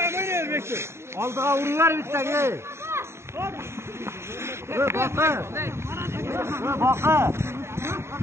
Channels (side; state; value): left; late; 0.13 ms